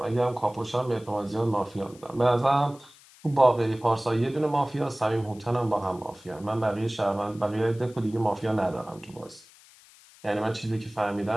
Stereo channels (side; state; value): left; noise; hiss, 25 dB below the sound